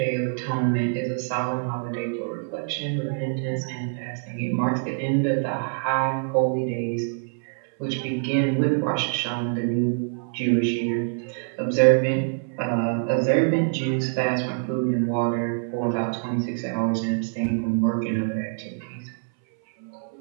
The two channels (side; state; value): left; silent; 62 dB below the other